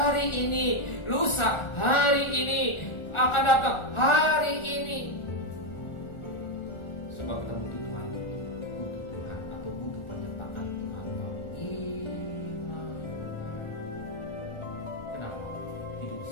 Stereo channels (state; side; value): late; right; 1.4 ms